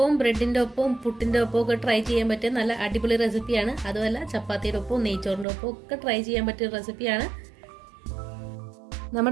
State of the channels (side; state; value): left; drops out; at 5.5 s